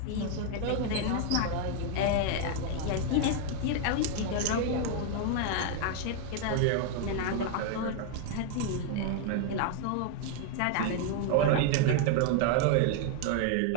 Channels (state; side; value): different; both; correlation 0.00